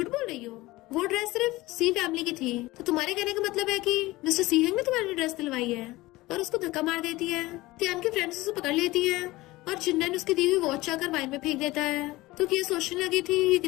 बोल रही हो, वो ड्रेस सिर्फ सी फैमिली की थी। तो तुम्हारे कहने का मतलब है कि मिस्टर सी हेंग ने तुम्हारी ड्रेस दिलवाई है, और उसको धक्का मार देती है। तियान की फ्रेंड्स उसे पकड़ लेती है और जिन्नन उसकी दी हुई वॉच आकर वाइन में फेंक देता है। तो ये सोचने लगी थी ये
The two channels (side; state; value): right; quieter; 19.4 dB